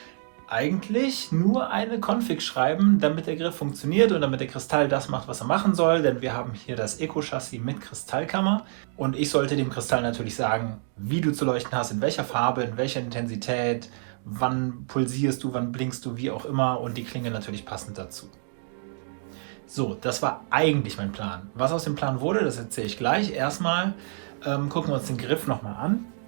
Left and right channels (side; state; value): left; silent; digital silence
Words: eigentlich nur eine Config schreiben, damit der Griff funktioniert und damit der Kristall das macht, was er machen soll. Denn wir haben hier das Eco-Chassis mit Kristallkammer und ich sollte dem Kristall natürlich sagen, wie du zu leuchten hast, in welcher Farbe, in welcher Intensität, wann pulsierst du, wann blinkst du, wie auch immer, und die Klinge natürlich passend dazu. So, das war eigentlich mein Plan. Was aus dem Plan wurde, das erzähle ich gleich. Erstmal gucken wir uns den Griff nochmal an.